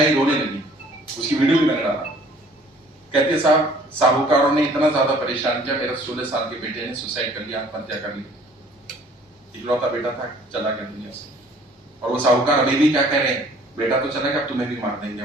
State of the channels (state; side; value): normal; both; correlation 0.55